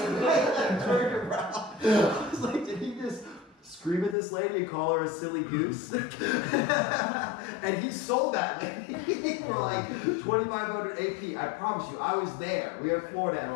was like, did he just scream at this lady and call her a silly goose? And he sold that lady for like $2,500 AP. I promise you, I was there. We were in Florida at a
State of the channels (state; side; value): drops out; right; at 4.2 s